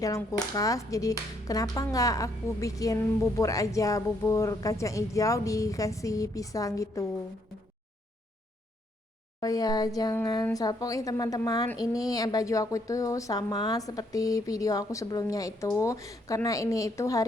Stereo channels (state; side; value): normal; both; correlation 0.71